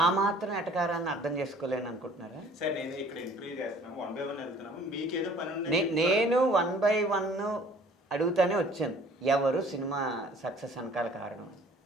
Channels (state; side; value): normal; both; correlation 0.53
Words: ఆ మాత్రం ఎటకారాన్ని అర్థం చేసుకోలేను అనుకుంటున్నారా సార్? నేను ఇక్కడ ఇంటర్వ్యూ చేస్తున్నాము, 1 by 1 వెళ్తున్నాము, మీకేదో పని ఉంది. నేను 1 by 1 అడుగుతానే వచ్చాను, ఎవరు సినిమా సక్సెస్ వెనకాల కారణం.